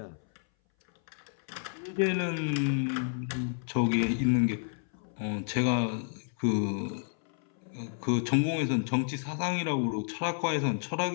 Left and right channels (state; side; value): silent; right; 57 dB below the other